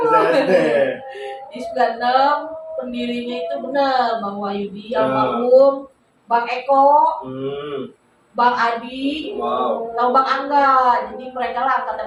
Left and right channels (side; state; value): both; identical; correlation 1.00